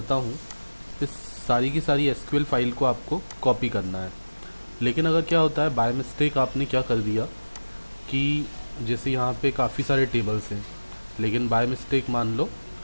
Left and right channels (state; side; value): inverted; both; correlation -1.00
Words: हूँ, इस सारी की सारी एसक्यूएल फाइल को आपको कॉपी करना है। लेकिन अगर क्या होता है, बाय मिस्टेक आपने क्या कर दिया कि जैसे यहाँ पे काफ़ी सारे टेबल्स हैं, लेकिन बाय मिस्टेक मान लो